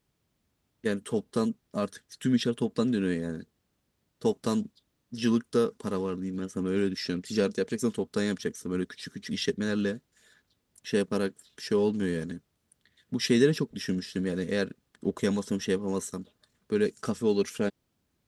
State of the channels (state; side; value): identical; both; correlation 1.00